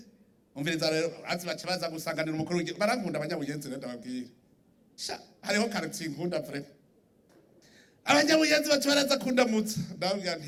Umviriza rero baca baza gusanganira umukuru w'igihugu, barankunda abanyabuyenzi rero ndababwira. Sha hariho quartier nkunda vraiment. Abanyabuyenzi baca baraza kundamutsa, ndababwira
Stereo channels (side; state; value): both; identical; correlation 1.00